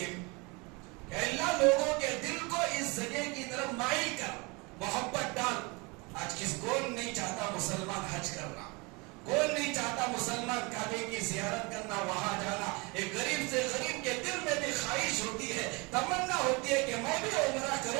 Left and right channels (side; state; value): left; quieter; 27.8 dB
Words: کہ اللہ لوگوں کے دل کو اس جگہ کی طرف مائل کر, محبت ڈال. آج کون نہیں چاہتا مسلمان حج کرنا, کون نہیں چاہتا مسلمان کعبے کی زیارت کرنا, وہاں جانا. ایک غریب سے غریب کے دل میں بھی خواہش ہوتی ہے, تمنا ہوتی ہے کہ میں بھی عمرہ